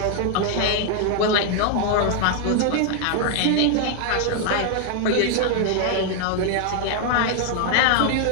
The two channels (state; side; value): different; both; correlation 0.00